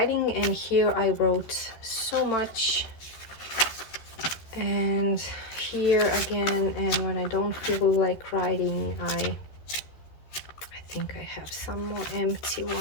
and here I wrote so much. And here again, and when I don't feel like writing, I think I have some more empty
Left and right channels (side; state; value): right; late; 13 ms